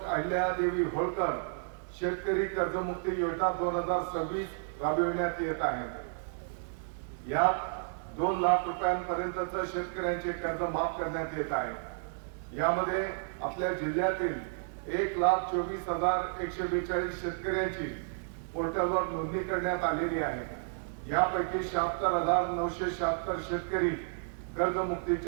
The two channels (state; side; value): silent; left; digital silence